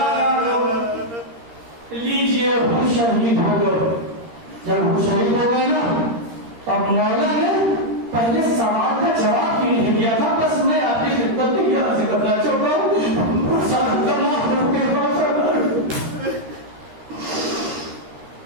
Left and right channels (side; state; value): left; late; 13 ms